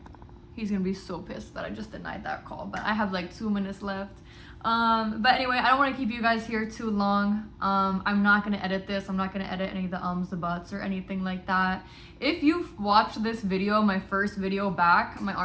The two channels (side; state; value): both; identical; correlation 1.00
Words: he's gonna be so pissed that I just denied that call, but I have like 2 minutes left. But anyway, I don't want to keep you guys here too long. I'm not gonna edit this. I'm not gonna edit any of the ums, the buts, or anything like that. If you've watched this video, my first video back, my